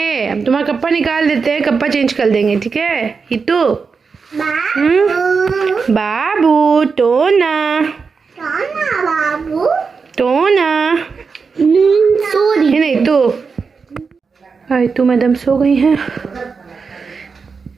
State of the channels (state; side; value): quieter; left; 5.1 dB